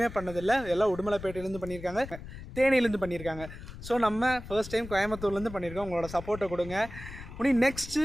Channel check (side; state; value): left; noise; rumble, 13 dB below the sound